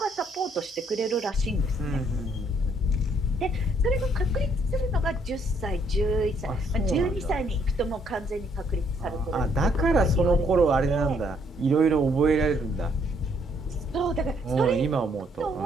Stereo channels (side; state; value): both; normal; correlation 0.68